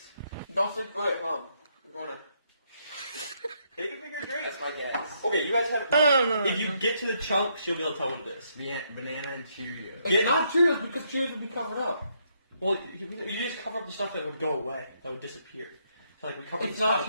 Don't say, wait, Mom. I'm going to. Take a bigger drink. That's my guess. Okay, you guys have. No. If you get to the chunks, you'll be able to tell what it is. Banana and Cheerios. It's Get- not Cheerios because Cheerios would be covered up. Well, you just cover up the stuff that would go away, that would disappear. So like we cover It's the not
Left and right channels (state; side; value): inverted; both; correlation -0.74